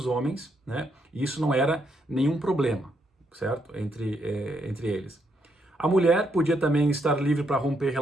homens, né? E isso não era nenhum problema, certo? Entre eles. A mulher podia também estar livre para romper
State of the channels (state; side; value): normal; both; correlation 0.77